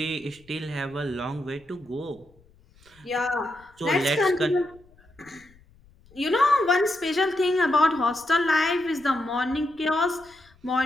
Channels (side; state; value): left; noise; rumble, 29 dB below the sound